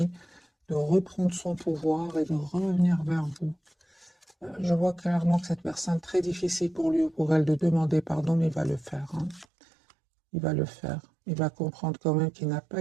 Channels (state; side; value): drops out; left; at 9.5 s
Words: de reprendre son pouvoir et de revenir vers vous. Je vois clairement que cette personne, très difficile pour lui ou pour elle de demander pardon, mais il va le faire, hein. Il va le faire. Il va comprendre quand même qu'il n'a pas